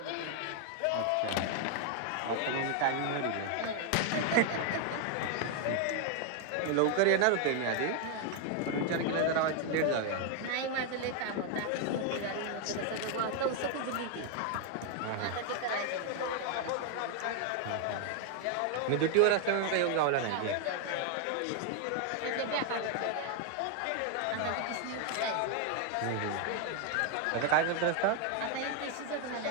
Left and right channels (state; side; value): different; both; correlation 0.01